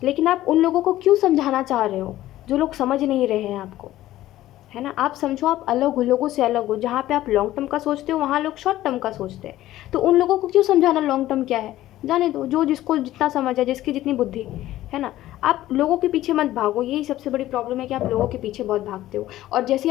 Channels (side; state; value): right; quieter; 14.7 dB